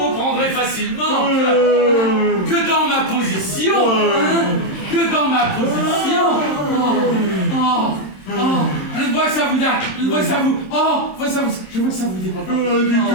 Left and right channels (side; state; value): right; late; 26 ms